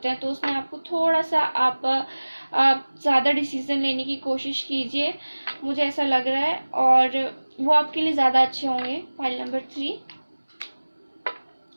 हैं, तो उसमें आपको थोड़ा सा आप ज़्यादा डिसीजन लेने की कोशिश कीजिए, मुझे ऐसा लग रहा है, और वो आपके लिए ज़्यादा अच्छे होंगे। फाइल नंबर 3,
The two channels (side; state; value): both; inverted; correlation -1.00